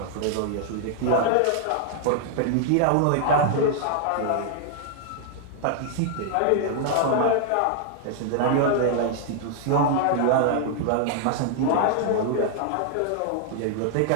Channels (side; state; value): both; different; correlation -0.01